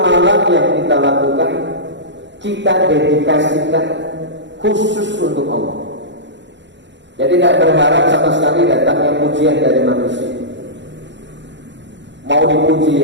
yang kita lakukan kita dedikasikan khusus untuk Allah. Jadi tidak berharap sama sekali datangnya pujian dari manusia. Mau dipuji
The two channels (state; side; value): late; left; 0.52 ms